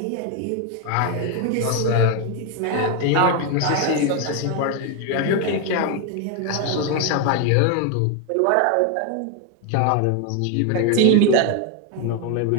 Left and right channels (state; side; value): different; both; correlation 0.01